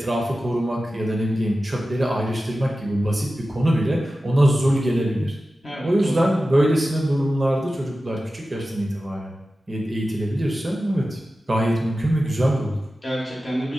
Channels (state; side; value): normal; both; correlation 0.94